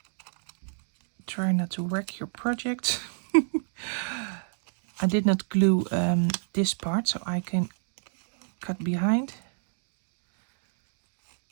Try not to wreck your project. I did not glue this part, so I can cut behind.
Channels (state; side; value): silent; left; digital silence